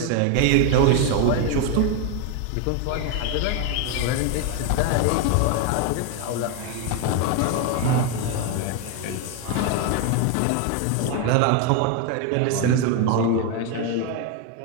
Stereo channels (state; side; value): different; both; correlation 0.01